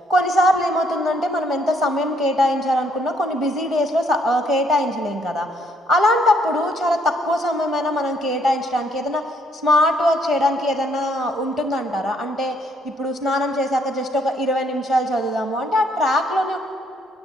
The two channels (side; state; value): both; normal; correlation 0.68